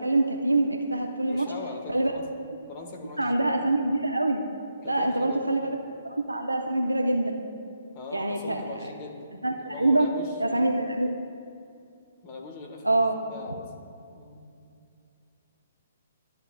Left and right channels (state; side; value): inverted; both; correlation -0.86